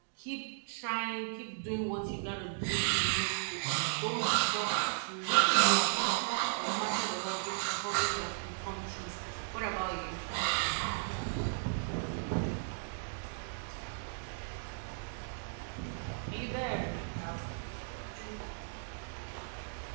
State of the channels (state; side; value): silent; left; digital silence